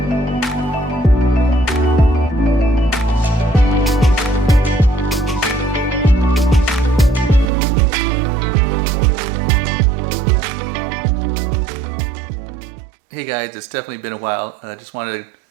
Hey guys, it's definitely been a while. I just wanted to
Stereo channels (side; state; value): left; drops out; at 7.5 s